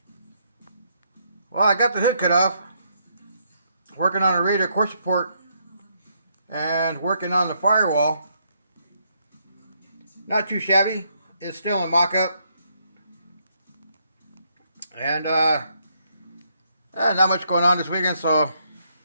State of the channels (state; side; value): inverted; both; correlation -0.74